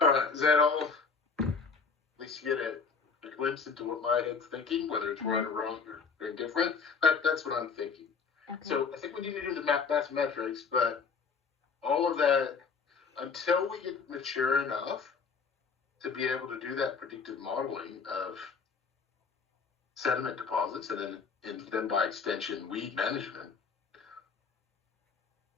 All right, is that all? At least you get a glimpse into what my head's thinking, whether it's right or wrong or indifferent. That's what I'm thinking. Okay. So I think we need to do the mathematics, but all of that, until we get mature enough to be able to do that predictive modeling of sediment deposits and then by extension weed management,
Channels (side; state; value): right; quieter; 5.3 dB